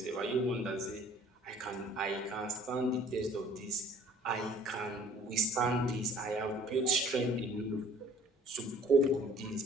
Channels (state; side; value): normal; both; correlation 0.54